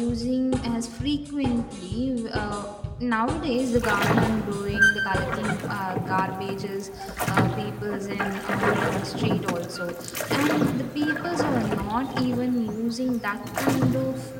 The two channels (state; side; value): identical; both; correlation 1.00